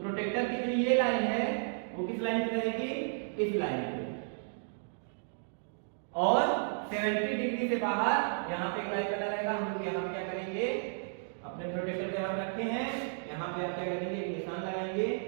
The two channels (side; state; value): left; silent; digital silence